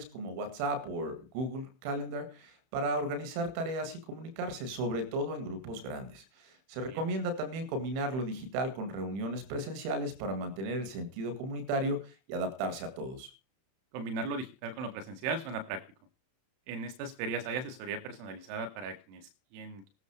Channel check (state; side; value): late; left; 31 ms